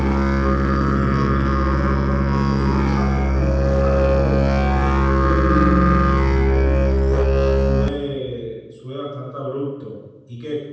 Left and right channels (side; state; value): both; identical; correlation 1.00